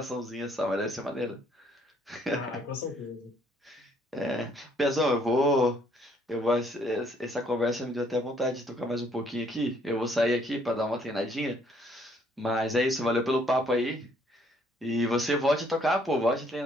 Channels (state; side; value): normal; both; correlation 0.65